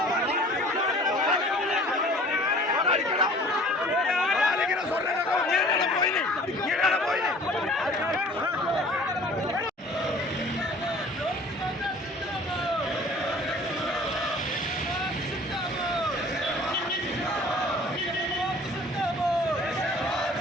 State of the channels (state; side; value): normal; both; correlation 0.49